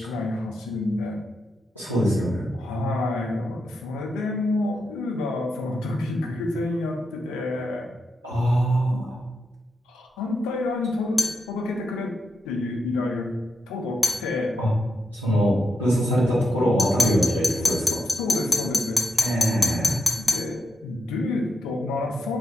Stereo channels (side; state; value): both; normal; correlation 0.84